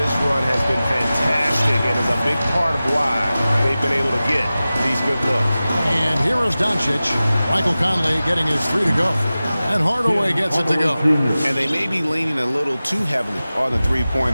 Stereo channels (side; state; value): both; inverted; correlation -0.96